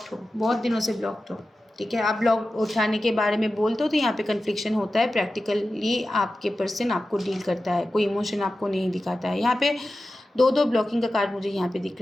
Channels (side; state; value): both; normal; correlation 0.94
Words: हो, बहुत दिनों से ब्लॉक्ड हो, ठीक है। आप ब्लॉक उठाने के बारे में बोलते हो तो यहाँ पे कन्फ्लिक्शन होता है। प्रैक्टिकली आपके पर्सन आपको डील करता है, कोई इमोशन आपको नहीं दिखाता है। यहाँ पे दो दो ब्लॉकिंग का कार्ड मुझे यहाँ पे दिख